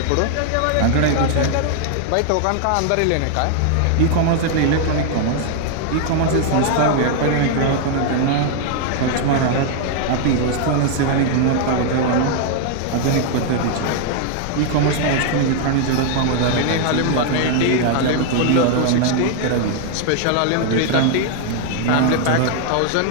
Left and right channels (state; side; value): different; both; correlation 0.00